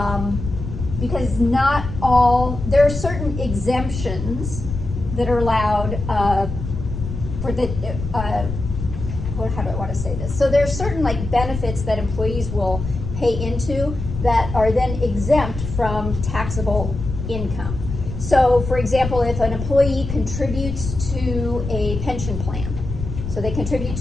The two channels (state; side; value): noise; left; rumble, 6 dB below the sound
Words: because not all, there are certain exemptions that are allowed for the, how do I want to say this? So there's certain like benefits that employees will pay into that are then exempt from taxable income. So for example, if an employee contributes to a pension plan, so they contribute